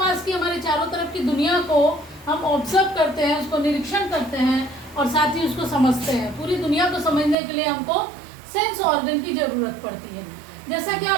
की, हमारे चारों तरफ की दुनिया को हम ऑब्जर्व करते हैं, उसको निरीक्षण करते हैं और साथ ही उसको समझते हैं। पूरी दुनिया को समझने के लिए हमको सेंस ऑर्गन की ज़रूरत पड़ती है। जैसा कि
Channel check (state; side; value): drops out; left; at 7.4 s